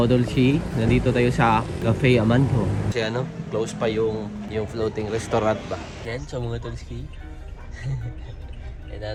C, nandito tayo sa Cafe Amanto. Kasi ano, close pa yung floating restaurant ba. Yan, so mga tulski.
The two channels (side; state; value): both; identical; correlation 1.00